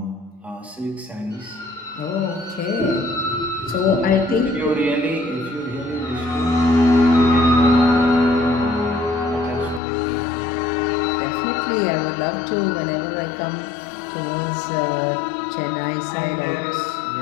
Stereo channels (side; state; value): right; drops out; at 9.8 s